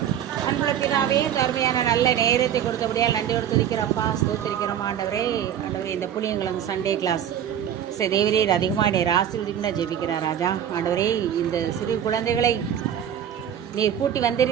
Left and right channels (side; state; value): left; quieter; 9.7 dB